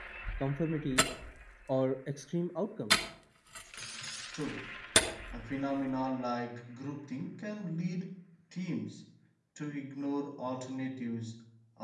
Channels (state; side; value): identical; both; correlation 1.00